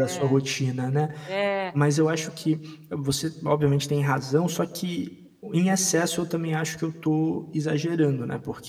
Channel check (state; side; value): identical; both; correlation 1.00